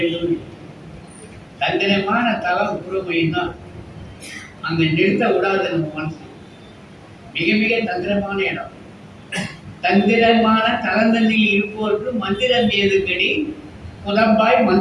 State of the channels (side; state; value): both; identical; correlation 1.00